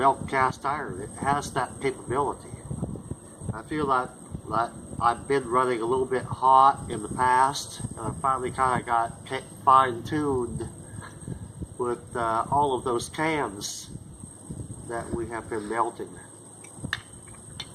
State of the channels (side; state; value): both; identical; correlation 1.00